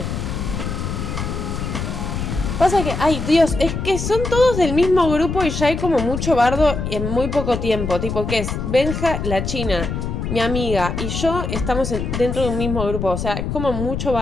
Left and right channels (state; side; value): noise; left; rumble, 4 dB below the sound